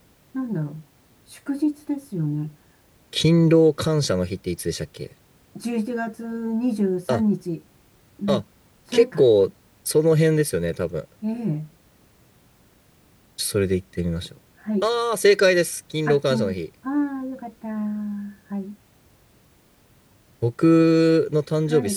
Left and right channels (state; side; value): identical; both; correlation 1.00